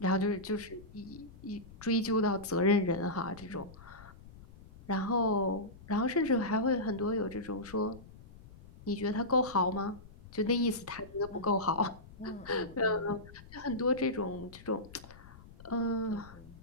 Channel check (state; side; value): noise; left; rumble, 19 dB below the sound